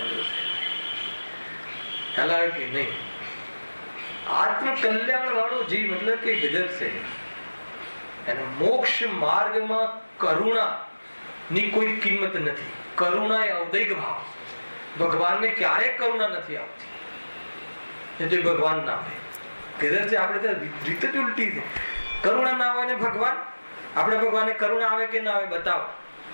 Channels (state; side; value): inverted; both; correlation -1.00